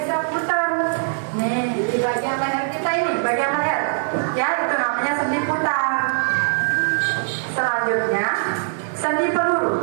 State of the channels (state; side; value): silent; left; digital silence